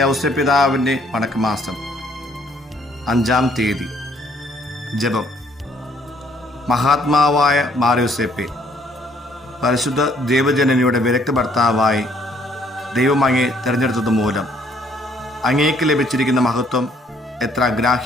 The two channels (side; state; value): both; normal; correlation 0.64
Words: പിതാവിൻ്റെ വണക്കമാസം 5-ാം തീയതി. ജപം. മഹാത്മാവായ മാറിയോസേപ്പെ, പരിശുദ്ധ ദൈവജനനിയുടെ വിരക്ത ഭർത്താവായി ദൈവം അങ്ങേ തിരഞ്ഞെടുത്തത് മൂലം അങ്ങേക്ക് ലഭിച്ചിരിക്കുന്ന മഹത്വം എത്ര